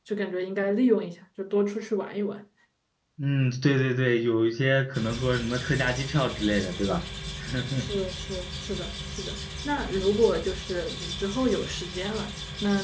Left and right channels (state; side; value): identical; both; correlation 1.00